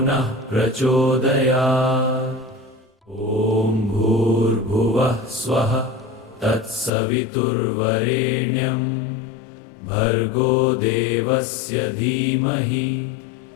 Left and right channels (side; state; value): right; drops out; at 6.9 s